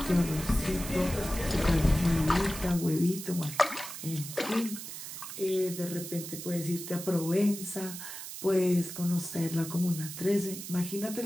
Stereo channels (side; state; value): right; noise; hiss, 9 dB below the sound